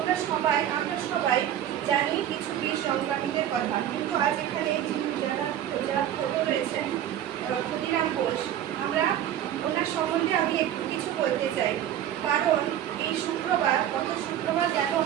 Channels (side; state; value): left; quieter; 11.1 dB